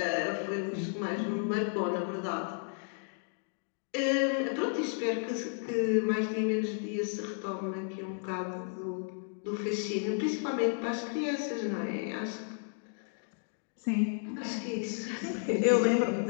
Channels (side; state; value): right; silent; 56 dB below the other